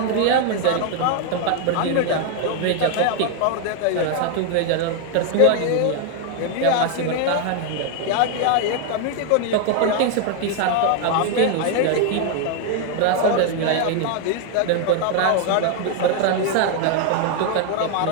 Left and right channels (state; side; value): different; both; correlation 0.01